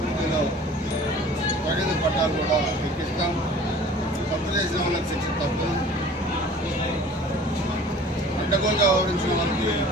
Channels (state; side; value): normal; both; correlation 0.46